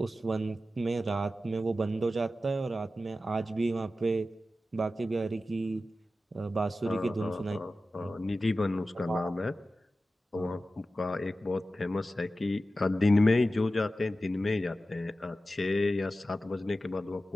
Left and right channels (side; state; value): both; normal; correlation 0.94